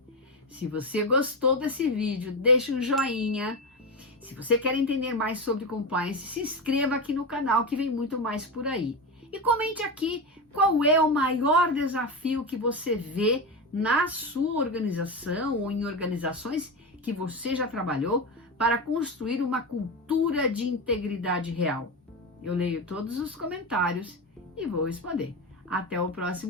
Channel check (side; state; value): both; normal; correlation 0.17